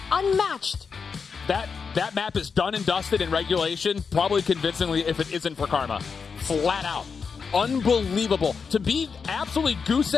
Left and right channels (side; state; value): right; quieter; 5.6 dB